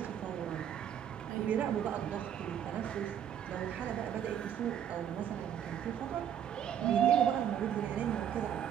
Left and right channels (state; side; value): quieter; left; 9.5 dB